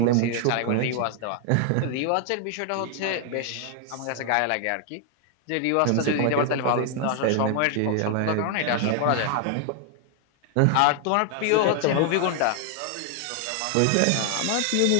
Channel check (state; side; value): different; both; correlation 0.00